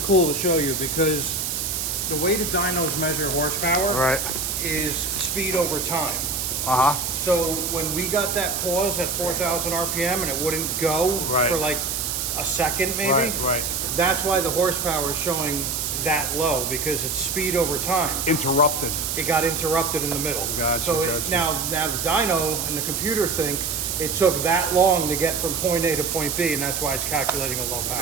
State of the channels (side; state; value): right; noise; hiss, 2 dB below the sound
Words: cool to show you because the way the dynos measure horsepower is speed over time. So when we got that pause at 4,000 RPM and it wouldn't go for like a second maybe, that's why the horsepower is showing that low, because it's speed over time. Interrupted. It got interrupted in the middle. Gotcha, So gotcha. now the dyno and the computer think it took that long to get from point A to point B, and that's why it's calculating a low